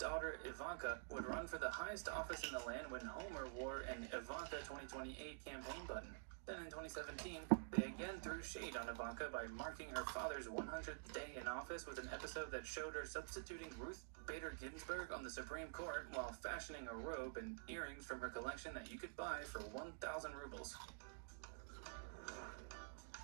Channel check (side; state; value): left; silent; digital silence